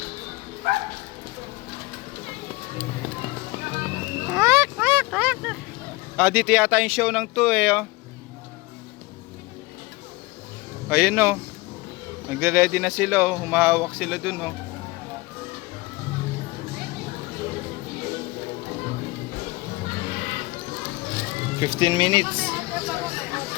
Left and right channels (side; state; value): right; quieter; 22.4 dB